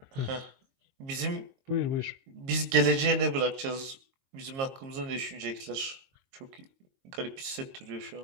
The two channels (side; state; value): left; late; 22 ms